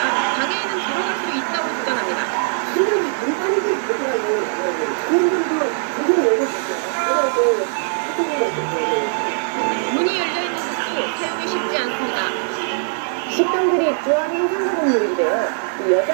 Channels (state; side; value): silent; left; 63 dB below the other